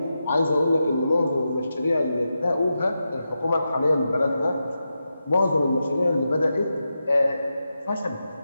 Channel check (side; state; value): both; inverted; correlation -0.89